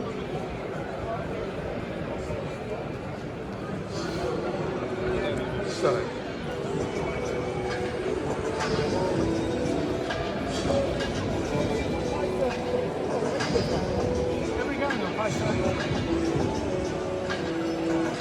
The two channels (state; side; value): identical; both; correlation 1.00